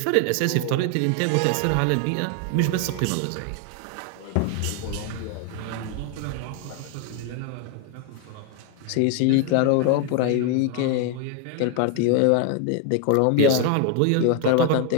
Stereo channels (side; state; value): both; different; correlation 0.01